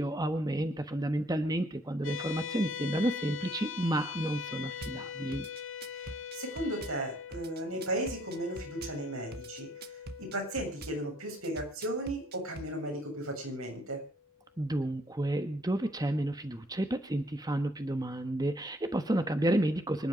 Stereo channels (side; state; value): both; normal; correlation 0.65